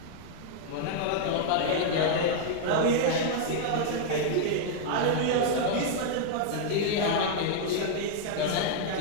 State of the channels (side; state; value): both; different; correlation -0.01